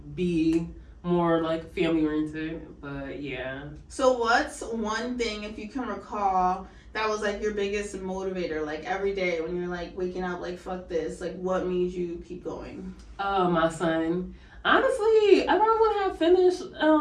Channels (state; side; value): identical; both; correlation 1.00